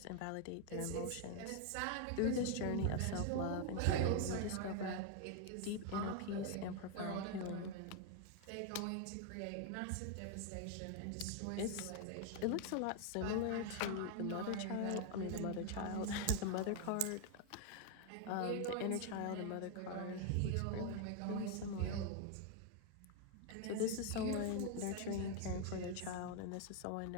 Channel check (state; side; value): different; both; correlation 0.01